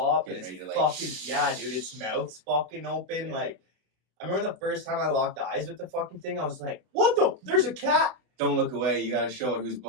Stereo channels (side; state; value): left; late; 32 ms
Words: up and Getting it's ready to, like, fucking yeah, dude. Its mouth's fucking open. Yeah. Like I remember the first time I locked eyes with the fucking thing, I was like, what the? There's a cat. Don't look away. You gotta show it who's